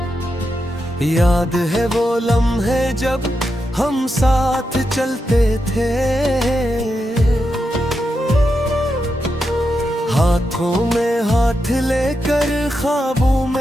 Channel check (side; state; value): both; normal; correlation 0.86